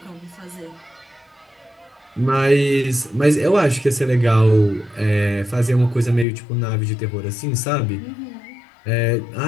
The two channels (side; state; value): right; drops out; at 6.2 s